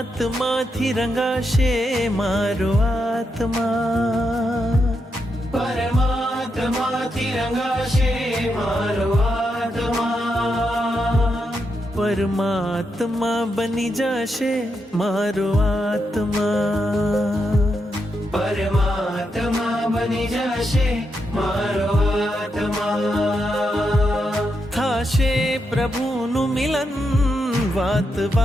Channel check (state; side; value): normal; both; correlation 0.83